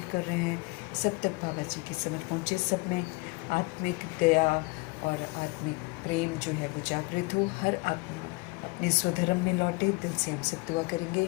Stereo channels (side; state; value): right; quieter; 26.2 dB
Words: कर रहे हैं। सब तक बाबा जी की समझ पहुँचे। सब में आत्मिक दया और आत्मिक प्रेम जो है वो जागृत हो। हर आत्मा अपने स्वधर्म में लौटे। दिल से हम सब दुआ करेंगे।